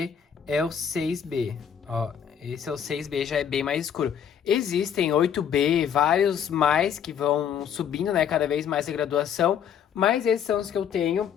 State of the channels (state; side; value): quieter; right; 8.4 dB